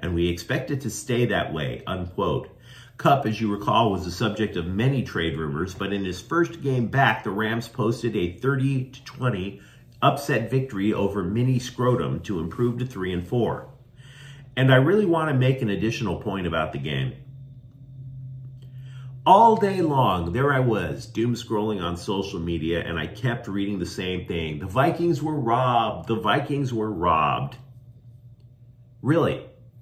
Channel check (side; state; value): both; identical; correlation 1.00